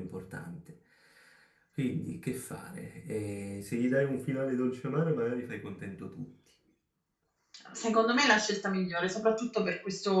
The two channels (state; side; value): identical; both; correlation 1.00